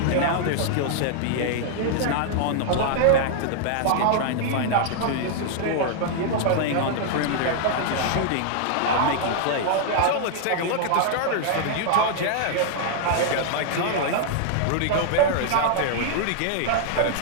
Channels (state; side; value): different; both; correlation -0.01